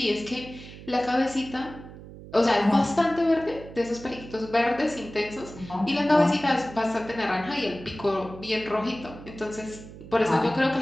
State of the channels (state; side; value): noise; right; hum, 15 dB below the sound